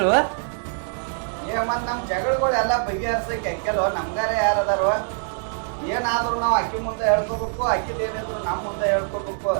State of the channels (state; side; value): silent; left; 63 dB below the other